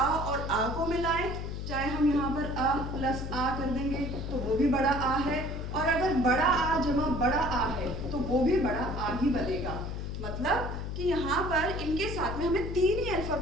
और आ को मिलाएं, चाहे हम यहाँ पर अ प्लस आ कर देंगे तो वो भी बड़ा आ है, और अगर बड़ा आ जमा बड़ा आ है तो वो भी बड़ा आ ही बनेगा। मतलब कि यहाँ पर इनके साथ में हमें 3 ही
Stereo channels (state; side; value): noise; left; hum, 5 dB below the sound